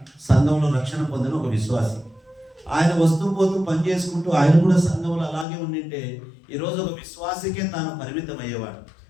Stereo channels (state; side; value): drops out; right; at 5.5 s